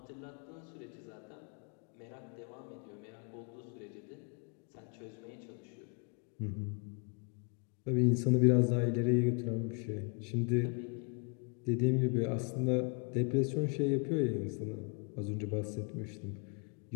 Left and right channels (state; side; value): quieter; right; 36.7 dB